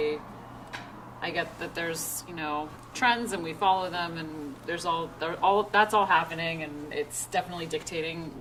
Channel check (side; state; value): both; identical; correlation 1.00